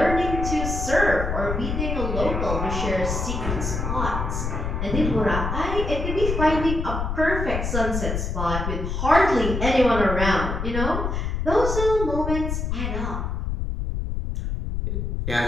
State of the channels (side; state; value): left; noise; rumble, 2 dB below the sound